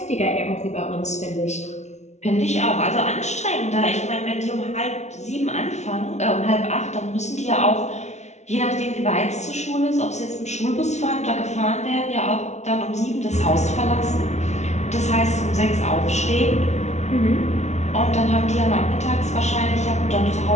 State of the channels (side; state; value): right; late; 0.32 ms